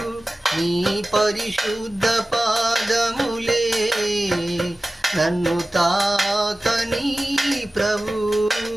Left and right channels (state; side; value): normal; both; correlation 0.96